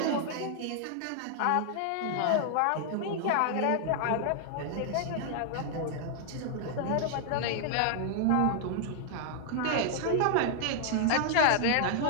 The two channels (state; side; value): different; both; correlation 0.00